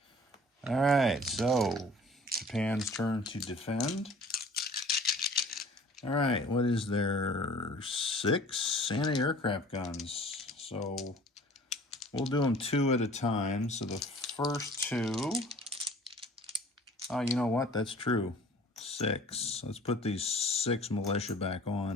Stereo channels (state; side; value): normal; both; correlation 0.49